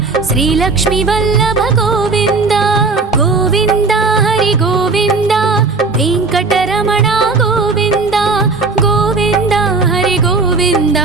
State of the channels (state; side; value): quieter; left; 4.1 dB